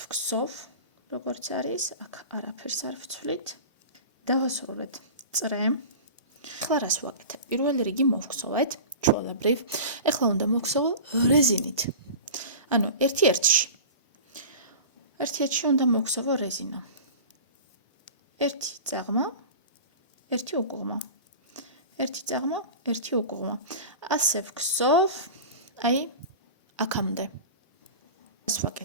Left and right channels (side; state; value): both; inverted; correlation -0.34